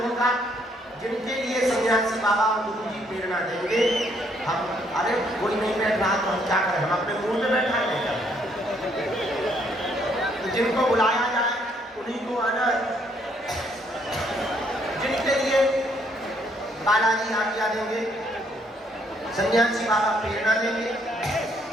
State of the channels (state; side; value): normal; both; correlation 0.69